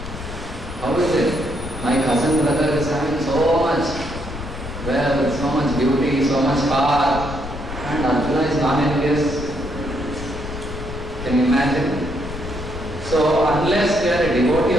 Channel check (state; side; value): noise; left; rumble, 10 dB below the sound